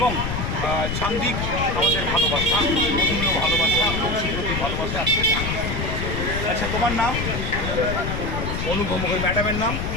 সান্দিক আমাদের ভালোবাসা, মধুমীয় ভালোবাসা, প্রতি ভালোবাসা। আচ্ছা, তোমার নাম? অনুভব মুখার্জি। ম্যাডামের নাম?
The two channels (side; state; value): left; noise; rumble, 3 dB below the sound